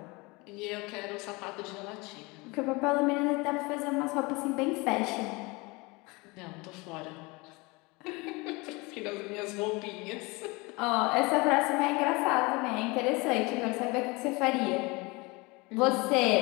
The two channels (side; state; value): right; quieter; 25.5 dB